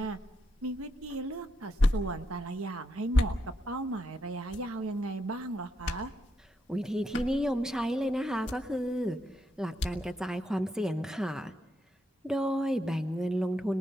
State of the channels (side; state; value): both; normal; correlation 0.82